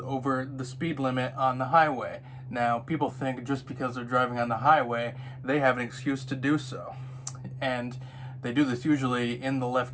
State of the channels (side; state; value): both; identical; correlation 1.00